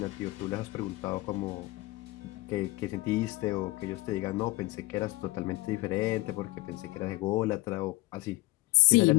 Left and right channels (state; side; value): quieter; right; 20.8 dB